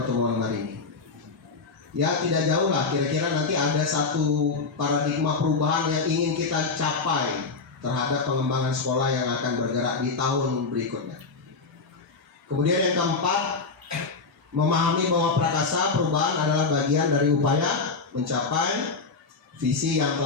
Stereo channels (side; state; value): right; quieter; 4.3 dB